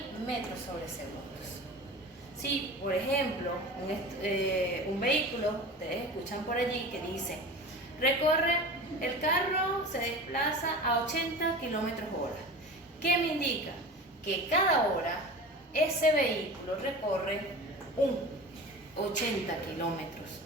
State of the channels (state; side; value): normal; both; correlation 0.34